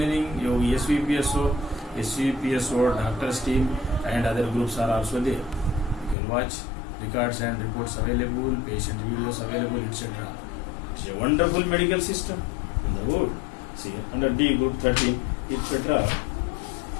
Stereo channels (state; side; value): drops out; right; at 6.2 s